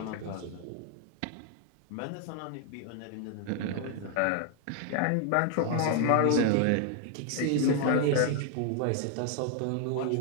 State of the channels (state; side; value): different; both; correlation 0.00